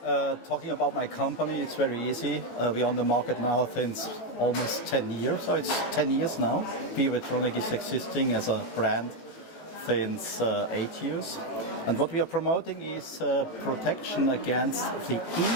talking about my company, it's very easy. We're on the market now since almost 10 years, so it's 10 years now. Biovitronic is existing as a brand since 8 years. And what we are promoting is protection against the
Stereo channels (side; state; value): right; late; 18 ms